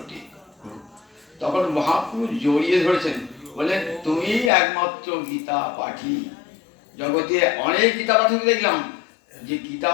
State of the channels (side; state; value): right; drops out; at 4.5 s